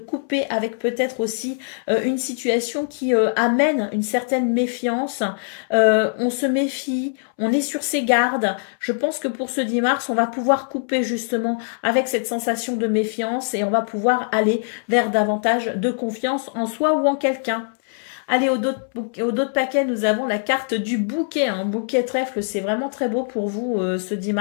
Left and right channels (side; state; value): right; silent; 64 dB below the other